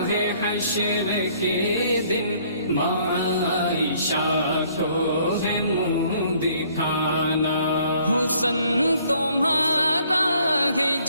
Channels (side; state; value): both; inverted; correlation -0.62